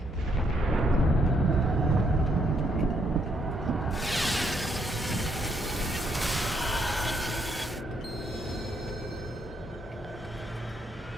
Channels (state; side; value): normal; both; correlation 0.73